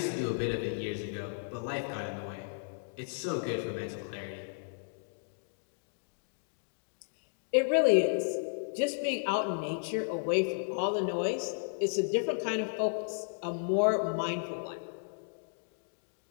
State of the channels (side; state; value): right; silent; digital silence